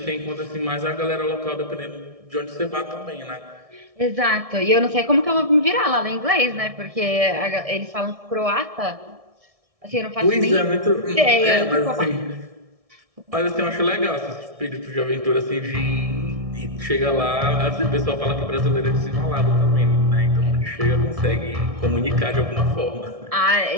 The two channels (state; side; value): late; left; 1.7 ms